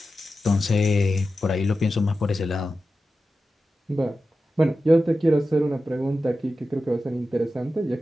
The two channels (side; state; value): both; normal; correlation 0.92